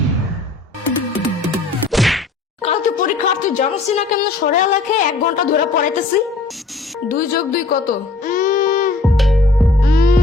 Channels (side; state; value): right; quieter; 3.5 dB